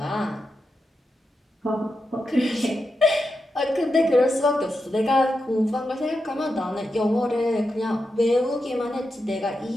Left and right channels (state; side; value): normal; both; correlation 0.88